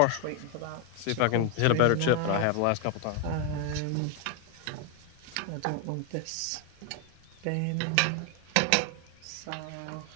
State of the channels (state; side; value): different; both; correlation 0.00